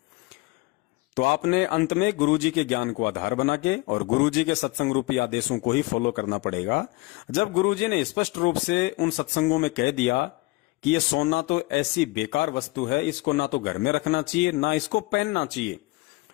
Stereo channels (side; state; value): right; quieter; 22.9 dB